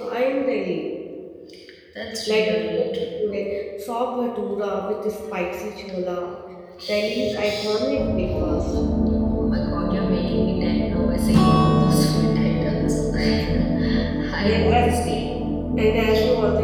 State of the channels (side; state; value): both; identical; correlation 1.00